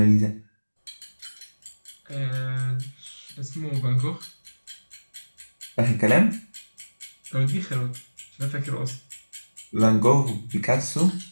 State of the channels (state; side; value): inverted; both; correlation -1.00